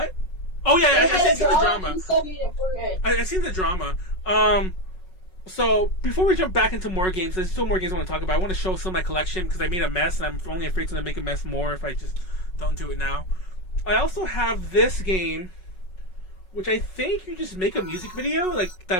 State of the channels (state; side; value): late; right; 5.4 ms